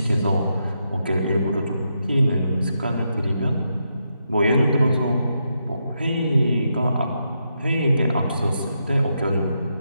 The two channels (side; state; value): both; inverted; correlation -0.82